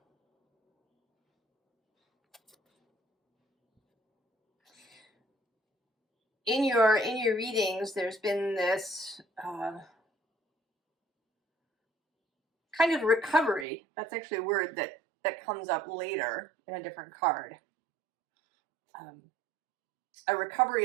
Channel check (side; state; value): left; drops out; at 13.7 s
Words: In your readings, there's been this kind of recovery. That's actually a word that comes up later in a different card. A recovery